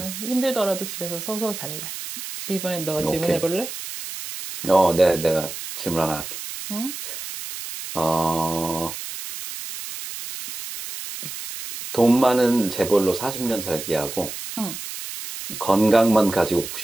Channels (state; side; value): noise; right; hiss, 9 dB below the sound